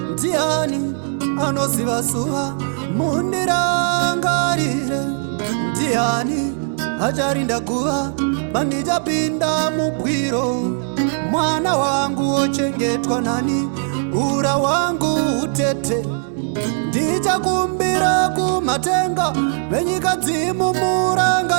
Ndiani anoziva zuva? Mundirangarire. Ndiani acharinda guva pandichapinda mugwiro? Mwana wangu ochengetwa nani? Ura wangu utete. Ndichakumbira kumatenga venyika dzimu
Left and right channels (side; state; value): left; silent; 66 dB below the other